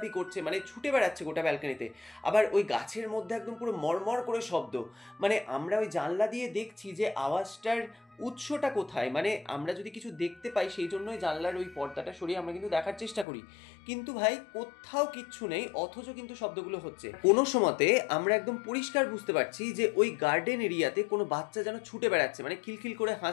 করছে, মানে ছুটে বেড়াচ্ছে গোটা ব্যালকনিতে। আবার ওই গাছের মধ্যে একদম পুরো মরমর করে শব্দ, মানে আমরা ওই জানলা দিয়ে দেখছি যে আওয়াজটার উৎসটা কোথায়, মানে আমরা যদি কিছু দেখতে পাই সেই জন্যই জানলার ওই পর্দাটা সরিয়ে আমরা কিন্তু দেখার চেষ্টা করি, কিন্তু ভাই কোথাও কিচ্ছু নেই, অথচ কিন্তু শব্দগুলো হচ্ছে। কোনো সময়তে আমরা একদম পরিষ্কার বুঝতে পারছি যে ওই গার্ডেন এরিয়াতে কোনো বাচ্চা যেন ছুটে বেড়াচ্ছে, মানে খিলখিল করে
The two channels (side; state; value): right; drops out; at 13.2 s